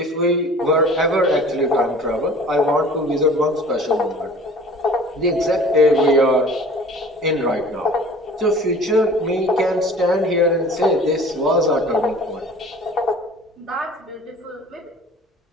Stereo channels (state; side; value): normal; both; correlation 0.46